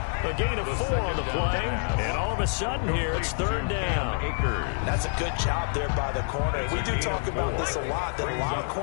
A gain of 4 on the play, and all of a sudden here, it's 3rd down. That's a good job there by the corner. We do talk about this a lot, that a lot of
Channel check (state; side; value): silent; right; 56 dB below the other